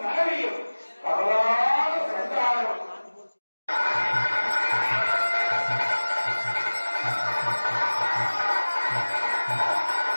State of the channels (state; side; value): inverted; both; correlation -1.00